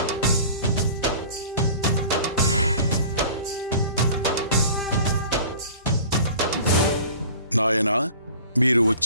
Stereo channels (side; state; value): both; inverted; correlation -0.43